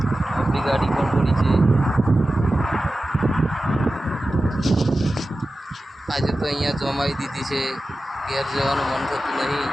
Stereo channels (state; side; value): normal; both; correlation 0.94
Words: આપણી ગાડી પણ પડી છે. આજે તો અહીંયા જમાઈ દીધી છે, ઘેર જવાનું મન થતું નહીં.